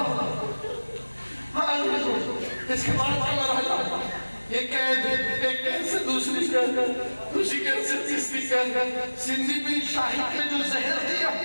اس کے بعد مرحلہ یہ قید ایک قید سے دوسری قید سے تیسری قید. سندھی بن شاہد نے جو زہر دیا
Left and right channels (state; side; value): inverted; both; correlation -1.00